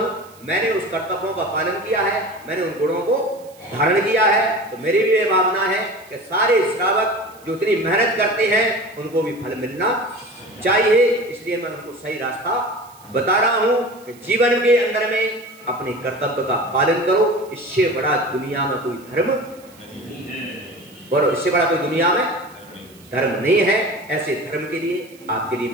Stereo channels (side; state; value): right; noise; hiss, 25 dB below the sound